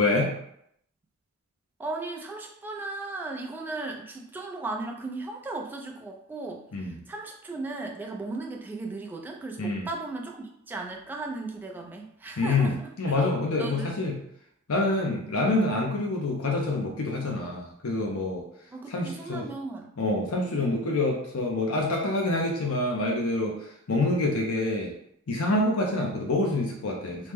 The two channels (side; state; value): both; normal; correlation 0.32